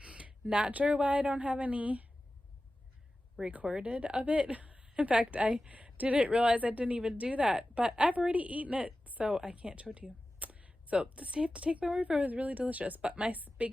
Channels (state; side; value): normal; both; correlation 0.95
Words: not sure why I don't have any recorded of it. In fact, I didn't realize I didn't even do that, but I've already eaten it, so I can't show it to you. So just have to take my word for it. It was really delicious. But my